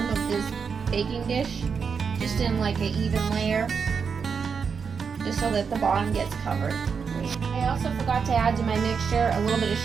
of this baking dish, just in like an even layer, just so that the bottom gets covered. I also forgot to add to my mixture a little bit of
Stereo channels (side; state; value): left; quieter; 6.0 dB